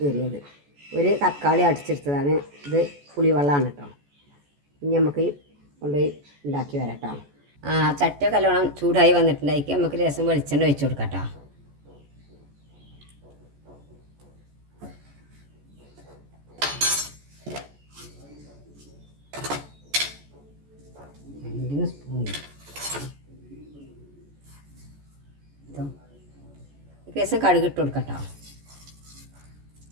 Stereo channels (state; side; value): late; left; 14 ms